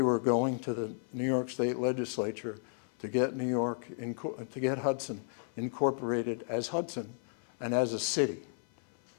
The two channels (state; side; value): silent; right; 56 dB below the other